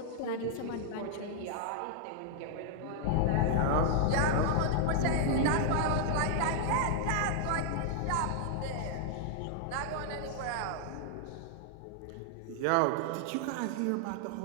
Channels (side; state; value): both; different; correlation -0.01